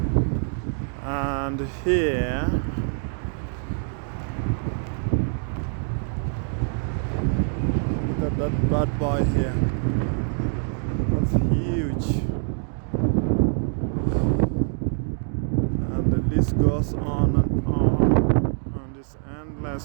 And here, look at that bad boy here. It's huge. And the list goes on and on. And it's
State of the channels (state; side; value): silent; left; 59 dB below the other